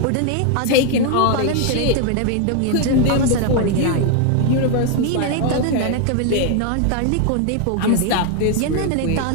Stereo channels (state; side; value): different; both; correlation 0.00